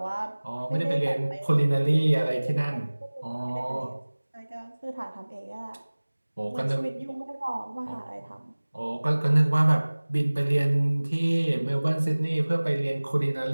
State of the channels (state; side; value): inverted; both; correlation -1.00